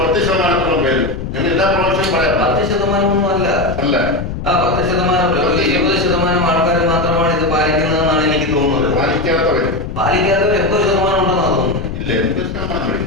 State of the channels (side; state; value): left; noise; rumble, 7 dB below the sound